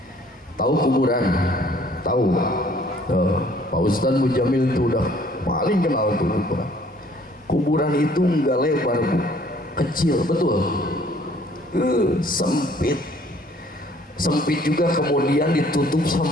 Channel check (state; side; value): normal; both; correlation 0.58